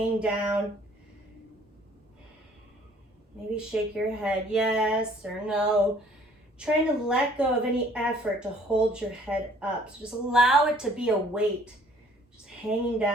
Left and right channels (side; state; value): both; normal; correlation 0.58